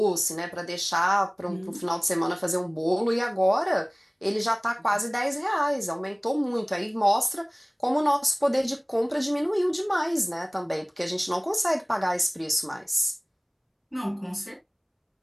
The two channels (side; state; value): both; identical; correlation 1.00